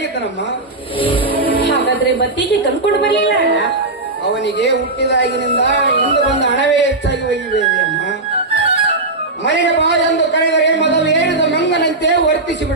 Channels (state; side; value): quieter; left; 3.0 dB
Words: ಹಾಗಾದ್ರೆ ಬತ್ತಿಗೆ ತಂದ್ಕೊಂಡು ಬರ್ಲಿಲ್ಲ ಅಣ್ಣ? ಅವನಿಗೆ ಹುಟ್ಟಿದಾಗಿನಿಂದ ಇಂದು ಬಂದ ಹಣವೇ ಹೆಚ್ಚಾಗಿ ಒಯ್ಯಿದೆ ಅಮ್ಮ. ಮನೆಗೆ ಬಾ ಎಂದು ಕರೆದರೆ ಮೊದಲು ಏರಿದ ಮಂಗನಂತೆ